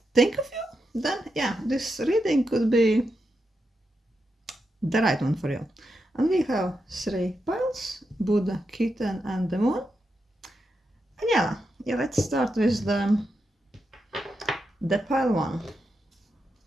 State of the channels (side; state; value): both; normal; correlation 0.86